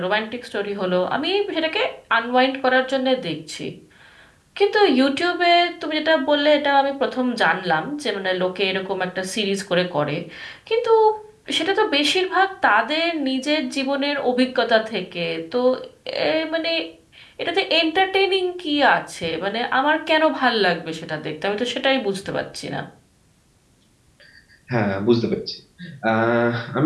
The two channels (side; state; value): both; identical; correlation 1.00